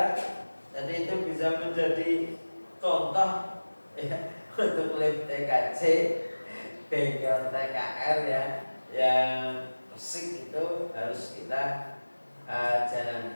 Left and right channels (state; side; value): inverted; both; correlation -1.00